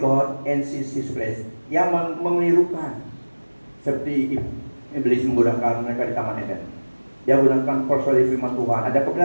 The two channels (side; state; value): both; inverted; correlation -1.00